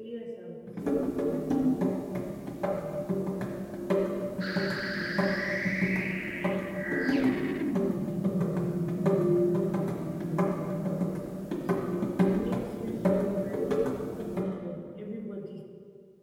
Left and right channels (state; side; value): identical; both; correlation 1.00